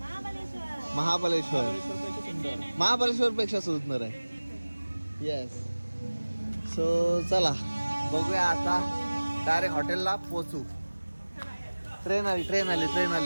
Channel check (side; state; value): both; inverted; correlation -1.00